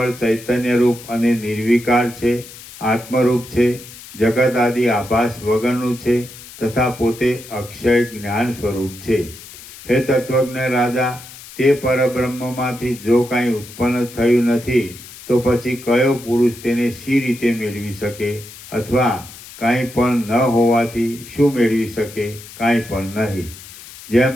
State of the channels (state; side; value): noise; left; hiss, 17 dB below the sound